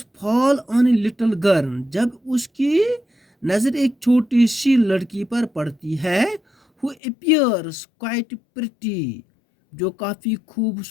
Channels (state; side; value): drops out; right; at 7.0 s